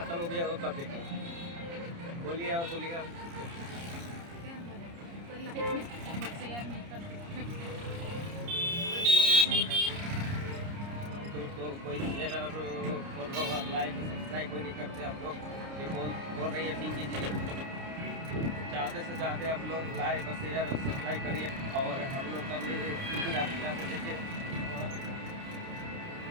हो गया वो कब देखेंगे? बोलिए और बोलिए। दोस्तों कोई शेयर और फॉलो और लाइक और सब्सक्राइब कोई नहीं करते आप लोग, ये बोल रही है पिंकी जी। ज़्यादा से ज़्यादा आप लोग लाइक और शेयर और सब्सक्राइब करिए और हम लोग का भी ज़्यादा देखिए और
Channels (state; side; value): late; left; 30 ms